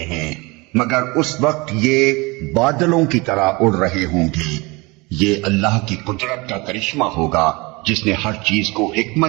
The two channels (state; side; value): quieter; left; 25.2 dB